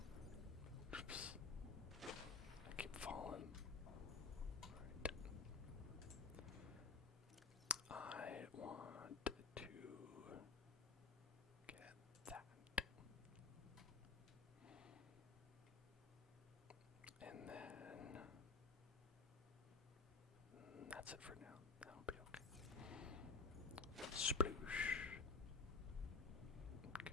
Oops. I keep falling. Alright. I want to get that. And then that's it for now. That'll be okay. Sploosh. Okay.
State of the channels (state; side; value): quieter; right; 4.4 dB